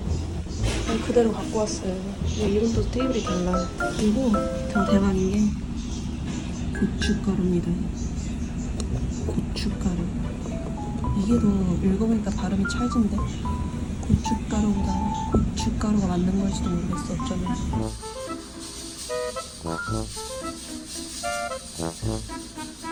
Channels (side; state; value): both; identical; correlation 1.00